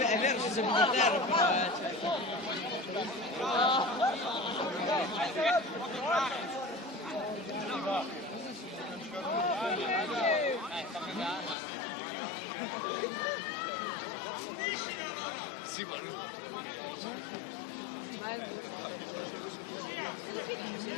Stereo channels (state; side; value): drops out; right; at 11.6 s